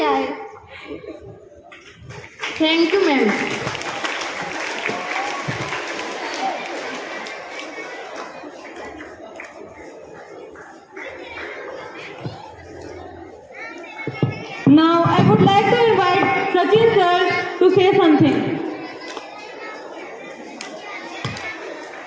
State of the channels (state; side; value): identical; both; correlation 1.00